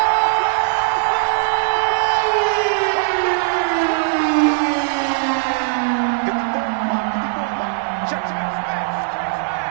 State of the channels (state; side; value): silent; left; digital silence